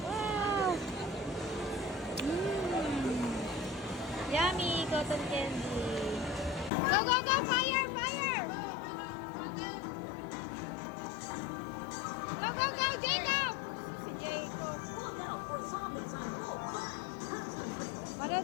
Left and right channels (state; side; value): drops out; right; at 6.7 s